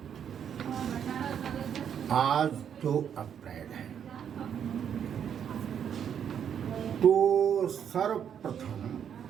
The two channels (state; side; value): quieter; left; 8.5 dB